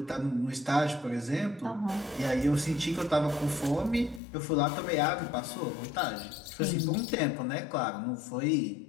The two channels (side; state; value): right; drops out; at 4.2 s